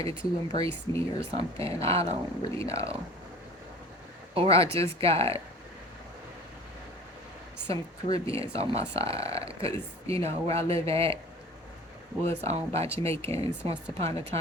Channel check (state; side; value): normal; both; correlation 0.43